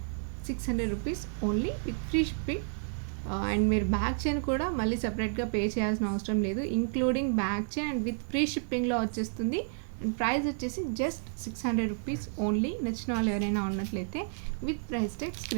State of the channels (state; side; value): silent; left; 57 dB below the other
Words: 600 rupees only with free shipping. And మీరు బ్యాక్ చైన్ కూడా మళ్ళీ సపరేట్గా పే చేయాల్సిన అవసరం లేదు. Including back chain and with free షిప్పింగ్లో వచ్చేస్తుంది. అండ్ ప్రైస్ వచ్చేసి జస్ట్ 600 రూపీస్ ఓన్లీ. నచ్చిన వాళ్ళు ఎవరైనా ఉన్నట్లయితే with price tag